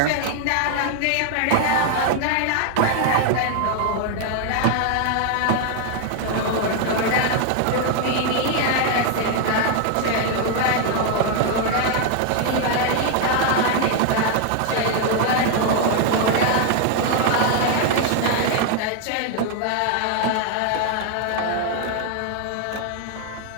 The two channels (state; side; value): different; both; correlation 0.00